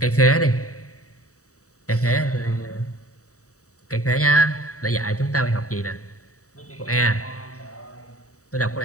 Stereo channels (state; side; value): late; right; 0.65 ms